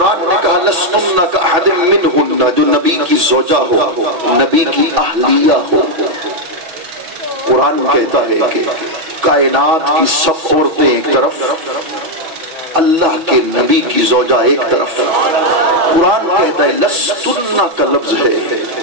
نے کہا لستن کأحد منہن، جو نبی کی زوجہ ہو، نبی کی اہلیہ ہو. قرآن کہتا ہے کہ کائنات کی سب عورتیں ایک طرف، اللہ کے نبی کی زوجہ ایک طرف. قرآن کہتا ہے لستن کا لفظ ہے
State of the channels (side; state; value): left; late; 6.1 ms